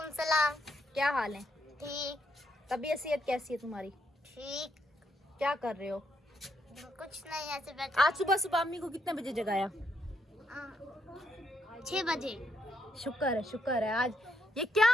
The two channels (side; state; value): both; normal; correlation 0.76